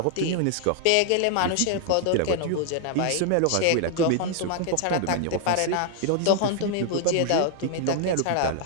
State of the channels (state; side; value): different; both; correlation 0.00